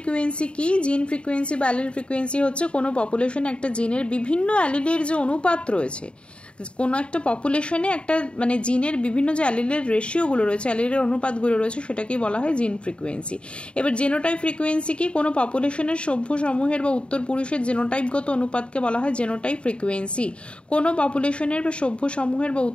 কি? জিন ফ্রিকুয়েন্সি বা অ্যালিল ফ্রিকুয়েন্সি হচ্ছে কোনো পপুলেশনে একটা জিনের বিভিন্ন অ্যালিলের যে অনুপাত রয়েছে, কোনো একটা পপুলেশনে একটা জিনের বিভিন্ন যে অ্যালিলের রেশিওগুলো রয়েছে, অ্যালিলের অনুপাতগুলো রয়েছে, সেটাকেই বলা হয় জিন ফ্রিকুয়েন্সি। এবার জেনোটাইপ ফ্রিকুয়েন্সি কি? কোনো পপুলেশনের সভ্য সমূহের বা উত্তর পুরুষের জেনোটাইপগত অনুপাতকে বলা হয় জেনোটাইপ ফ্রিকুয়েন্সি। কোনো পপুলেশনের বা সভ্য সমূহের বা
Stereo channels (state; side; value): late; right; 0.056 ms